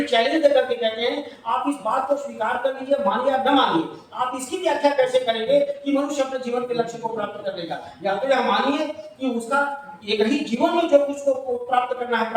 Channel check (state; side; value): identical; both; correlation 1.00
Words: चैलेंज देकर के कहते हैं आप इस बात को स्वीकार कर लीजिए, मानिए या न मानिए, आप इसकी व्याख्या कैसे करेंगे कि मनुष्य अपने जीवन के लक्ष्य को प्राप्त कर लेगा। या तो यह मानिए कि उसका एक ही जीवन में जो कुछ को प्राप्त करना है